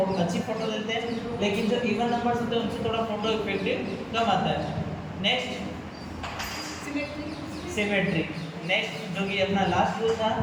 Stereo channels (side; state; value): both; identical; correlation 1.00